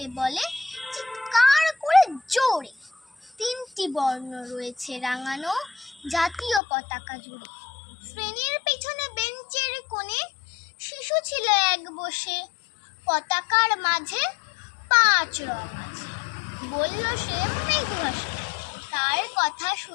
বলে চিৎকার করে জোরে, 3টি বর্ণ রয়েছে রাঙানো জাতীয় পতাকা জুড়ে। শ্রেণীর পেছনে বেঞ্চের কোণে শিশু ছিল এক বসে, পতাকার মাঝে 5 রং আছে বলল সে মৃদুহাসে। তার কথা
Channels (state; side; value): drops out; right; at 6.6 s